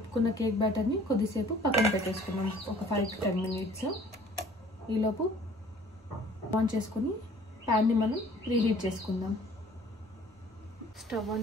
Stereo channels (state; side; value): normal; both; correlation 0.53